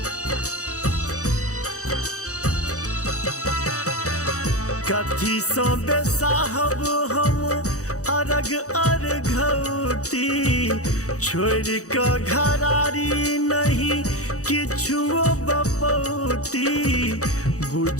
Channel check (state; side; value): late; right; 0.65 ms